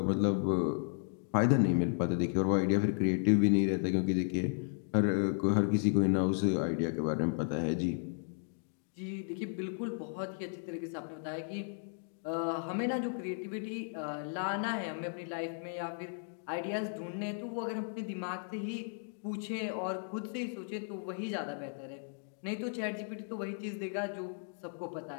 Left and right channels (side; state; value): right; silent; digital silence